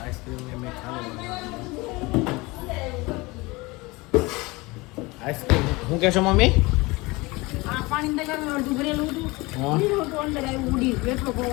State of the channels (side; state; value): right; quieter; 23.3 dB